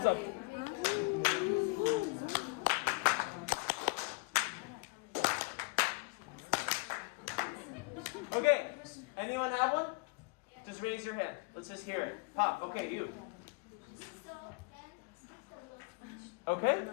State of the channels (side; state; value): right; quieter; 29.4 dB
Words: up. Okay, anyone have one? Just raise your hand. Let's just hear it. Pop, okay, you. Okay,